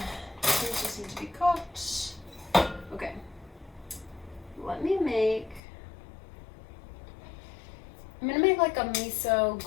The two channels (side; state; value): right; drops out; at 5.6 s